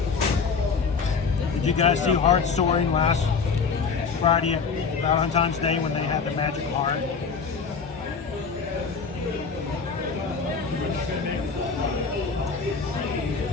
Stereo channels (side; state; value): right; quieter; 5.3 dB